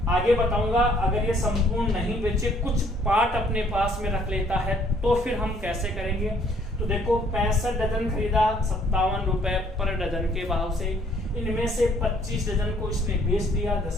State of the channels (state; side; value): normal; both; correlation 0.62